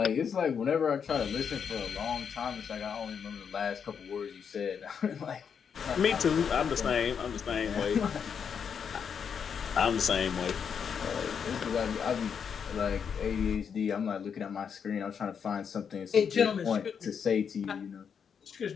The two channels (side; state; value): right; quieter; 7.0 dB